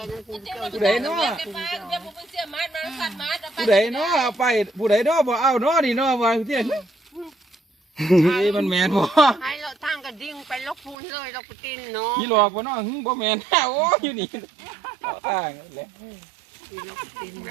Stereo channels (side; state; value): left; drops out; at 11.0 s